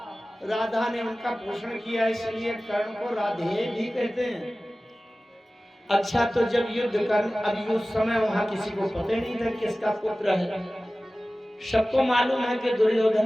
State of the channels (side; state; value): both; normal; correlation 0.97